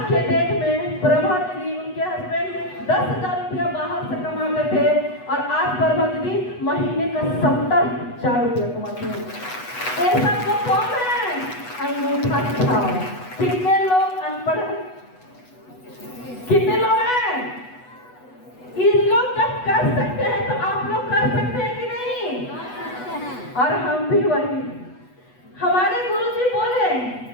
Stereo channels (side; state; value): right; late; 8.1 ms